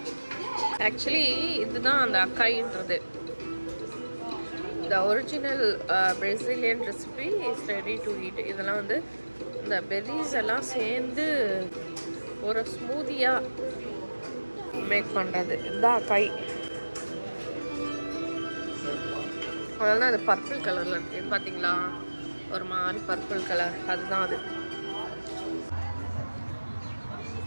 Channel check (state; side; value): inverted; both; correlation -1.00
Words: ஆக்சுவலி இதுதான் அந்த அக்காயின்றது. The original Brazilian recipe is ready to eat. இதெல்லாம் வந்து இந்த பெரிஸ் எல்லாம் சேர்ந்து ஒரு ஸ்மூதியாக மேக் பண்ணுறது. இதுதான் அக்காய். அதனால அது பர்பிள் கலரில் இருக்குது பார்த்தீங்களா, ஒரு மாதிரி பர்பிள் கலர், அதுதான் அது.